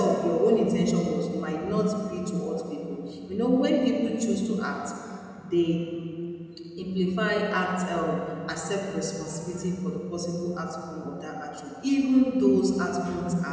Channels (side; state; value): both; identical; correlation 1.00